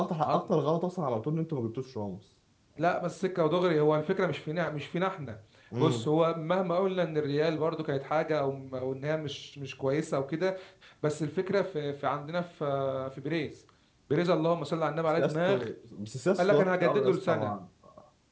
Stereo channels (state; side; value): identical; both; correlation 1.00